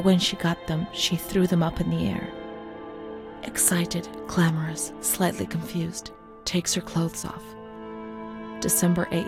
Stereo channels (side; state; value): both; identical; correlation 1.00